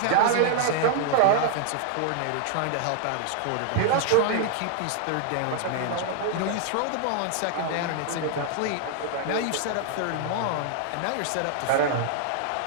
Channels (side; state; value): both; different; correlation 0.00